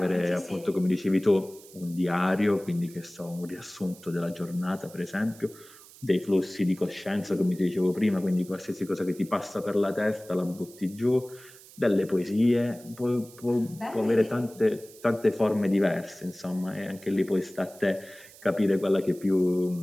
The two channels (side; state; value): right; noise; hiss, 21 dB below the sound